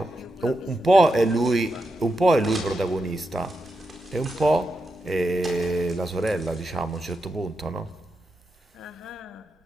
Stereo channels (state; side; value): normal; both; correlation 0.86